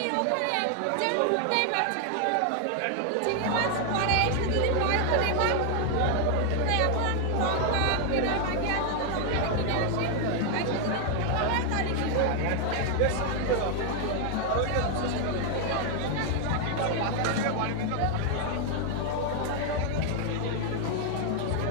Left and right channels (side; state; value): both; different; correlation 0.00